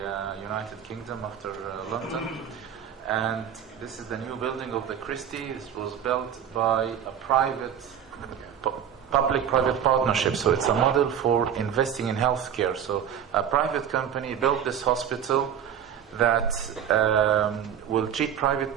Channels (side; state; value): left; quieter; 8.8 dB